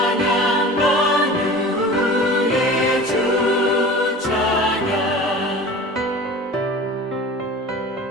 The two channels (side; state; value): both; normal; correlation 0.38